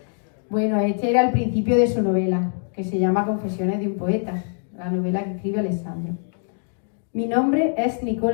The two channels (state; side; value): silent; right; digital silence